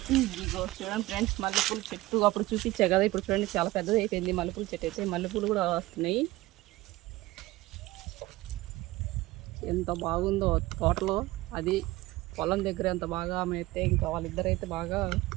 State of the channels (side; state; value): left; quieter; 18.8 dB